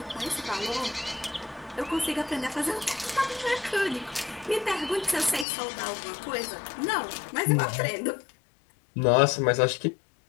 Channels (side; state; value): right; drops out; at 5.5 s